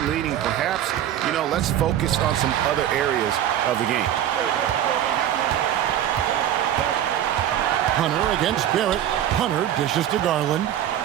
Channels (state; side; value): quieter; left; 11.1 dB